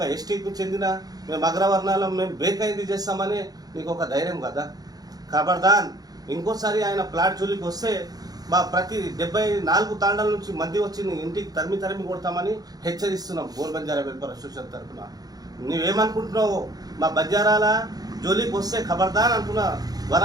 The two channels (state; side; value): late; left; 0.19 ms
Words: ఎస్టీకి చెందిన మేము అగ్రవర్ణాలం మేము బ్రేక్ అయింది చేస్తామని నీకు ఒక ధైర్యం కదా. ఖబర్దాన్ ఇంకోసారి ఆయన ప్లాట్ జోలికి వస్తే మా ప్రతి 74 తాండాల నుంచి మంది వచ్చి ఇంటికి తరిమి కొడతామని హెచ్చరిస్తున్నాం గోల్ బంజారా వెల్ఫేర్ అసోసియేషన్ తరఫున. నువ్వేమనుకుంటున్నావు? మా బంజారాల జోలికి వస్తే ఖబర్దాన్ అంటున్నా.